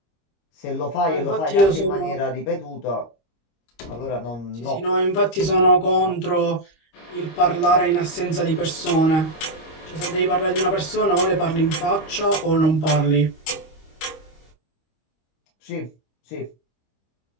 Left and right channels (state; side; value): late; right; 25 ms